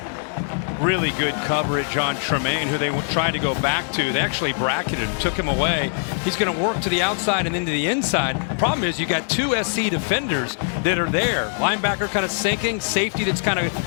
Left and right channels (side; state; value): right; silent; 64 dB below the other